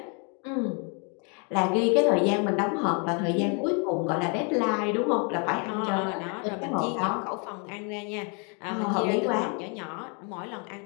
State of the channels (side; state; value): right; quieter; 36.3 dB